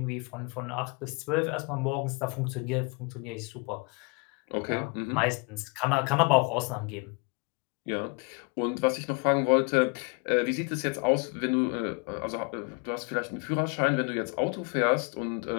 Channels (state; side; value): quieter; right; 32.4 dB